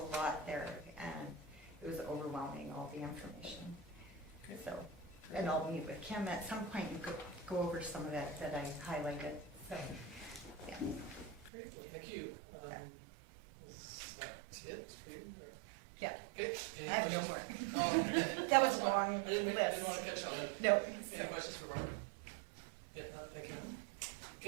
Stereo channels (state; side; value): drops out; left; at 11.5 s